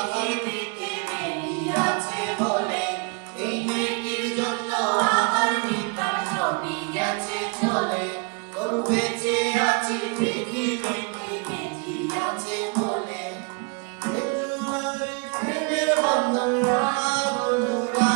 মেয়ে আছে বলে। এই মেয়েটির জন্য আমার পিতা সঙ্গী গেছে চলে, তবু বেঁচে আছি পৃথিবীতে মেয়ে আছে বলে। প্রেমের বন্ধন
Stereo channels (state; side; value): quieter; left; 32.5 dB